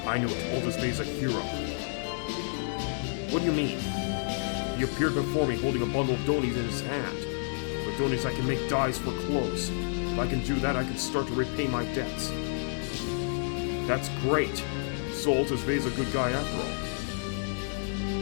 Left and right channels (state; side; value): silent; right; 58 dB below the other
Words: I knew it. Altus Vey is a hero. What do you mean? He appeared before me holding a bundle of donies in his hand. With donies I can make dyes for clothes. If I can do that, I can start to repay my debts. That's great. So Altus Vey is a good guy after